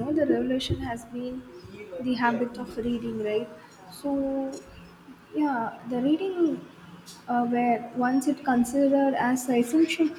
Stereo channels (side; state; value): both; identical; correlation 1.00